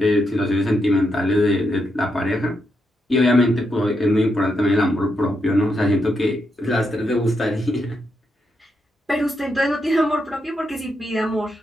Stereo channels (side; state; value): both; normal; correlation 0.82